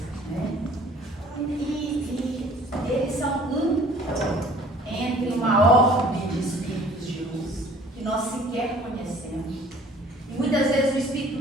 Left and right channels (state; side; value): normal; both; correlation 0.52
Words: né? E eles são entre uma ordem de espíritos de luz que nós sequer conhecemos. E muitas vezes o espírito